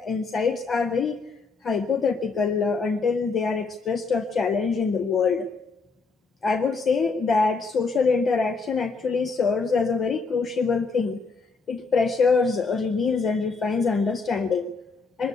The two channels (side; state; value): right; quieter; 4.4 dB